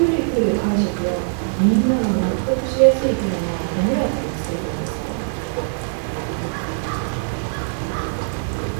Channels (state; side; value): silent; left; digital silence